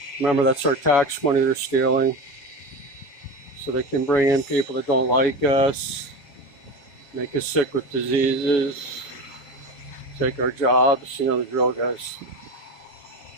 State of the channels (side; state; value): right; late; 7.1 ms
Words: Remember, that's our tax money they're stealing. So they can bring in people that don't like us, make us sick with diseases, take our jobs. You know the drill, guys.